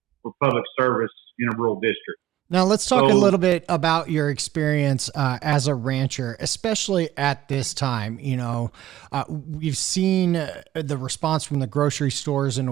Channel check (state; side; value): quieter; left; 13.8 dB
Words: for public service in a rural district. Now let's talk a little bit about your experience as a rancher, especially at this time. You know, we've seen the response from the grocery stores in